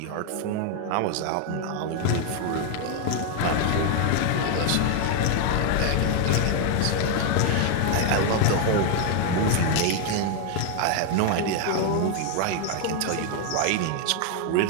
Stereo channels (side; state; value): both; different; correlation 0.01